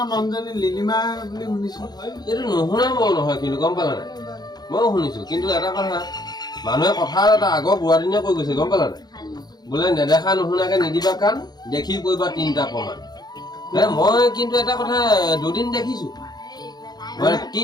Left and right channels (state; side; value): late; right; 0.20 ms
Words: মানুহজনী লিলিমা বুলি শুনিছো এইটো নুশুনা মই নহয় কিন্তু গম পালা নাই ময়ো শুনিছো কিন্তু এটা কথা মানুহে কথা এটা আগৰ বুঢ়াদিনীয়ে কৈ গৈছে গম পালা নাই বোলে নেদেখা নুশুনাকে নিদিবা কাণ দেখি কৰিবা 3টা প্ৰমাণ মই কিন্তু এটা কথা দুদিন দেখিছো মানে